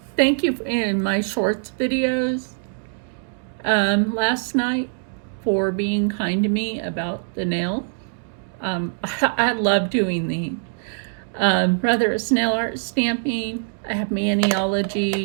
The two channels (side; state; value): left; silent; digital silence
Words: thank you in my shorts videos last night for being kind to me about the nail. I love doing these. Whether it's nail art stamping, I have